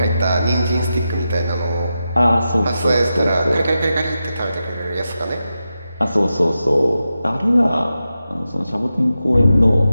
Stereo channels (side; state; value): both; inverted; correlation -0.90